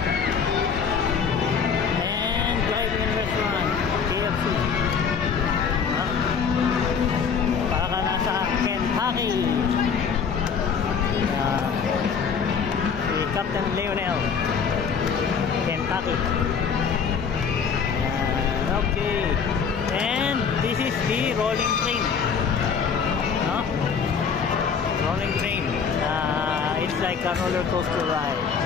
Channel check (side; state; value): right; quieter; 6.3 dB